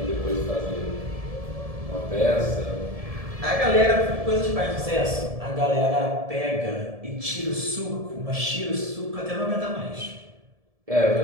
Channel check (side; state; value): left; late; 1.7 ms